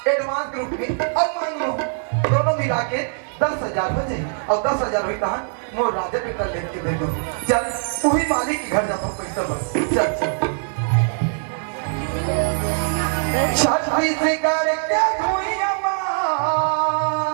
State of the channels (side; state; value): left; silent; 64 dB below the other